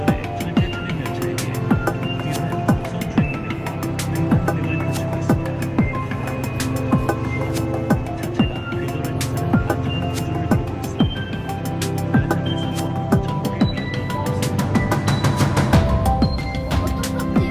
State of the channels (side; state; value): both; identical; correlation 1.00